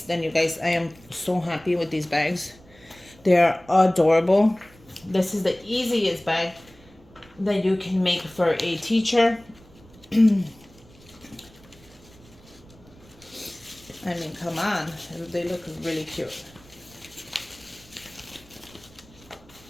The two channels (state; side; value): noise; right; rumble, 25 dB below the sound